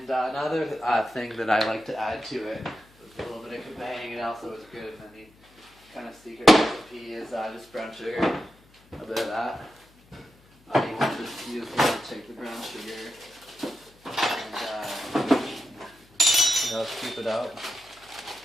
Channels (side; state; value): left; noise; hum, 29 dB below the sound